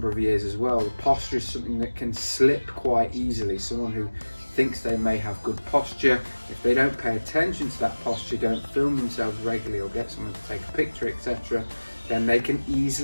of years as well. The posture is something that can slip quite easily. Someone who thinks they may have good posture, if they don't pay attention to that posture, don't film themselves regularly or get someone to take a picture, etc., then they can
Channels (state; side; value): inverted; both; correlation -1.00